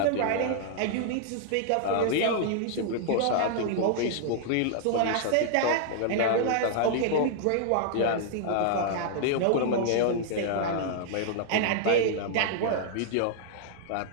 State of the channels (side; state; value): both; different; correlation 0.00